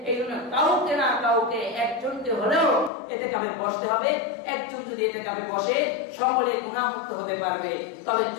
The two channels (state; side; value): drops out; right; at 2.9 s